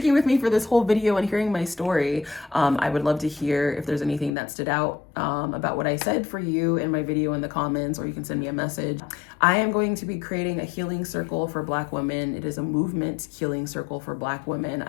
with me for this whole video and hearing my story. I would love to hear if there's anything that stood out about what I said for you in my video in the comments, or you can send me a message. I am going to be creating a healing circle for Black women. It is a movement healing circle for Black women.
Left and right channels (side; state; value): right; drops out; at 4.4 s